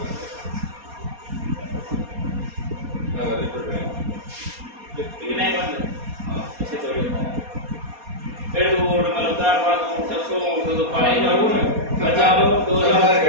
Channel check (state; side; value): late; left; 4.2 ms